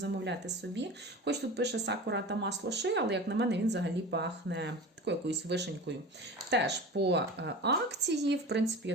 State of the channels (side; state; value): both; normal; correlation 0.33